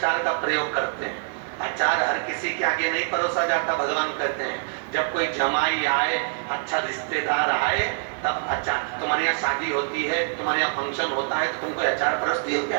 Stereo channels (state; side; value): silent; left; digital silence